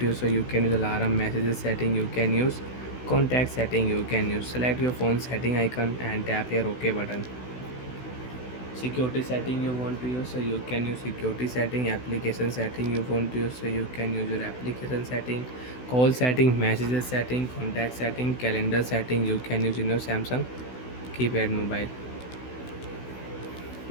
use, so you can use alarm, messages setting you can use, contact setting you can use. Select your phone setting icon and tap here OK button. Security setting you want to use, so you can use security setting. Application setting you want to use, so you can use your application setting. Call setting, messages setting, contact setting, calendar setting you can use in your Samsung keypad mobile.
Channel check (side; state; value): right; late; 16 ms